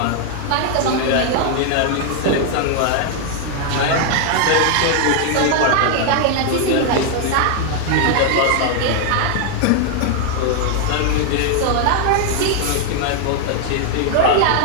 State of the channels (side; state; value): both; different; correlation 0.00